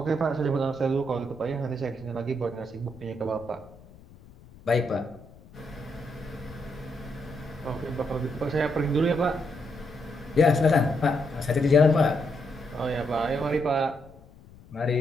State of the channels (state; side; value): noise; left; rumble, 22 dB below the sound